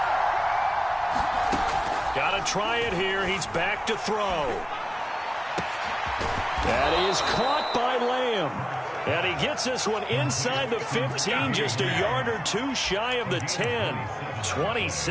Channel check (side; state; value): both; identical; correlation 1.00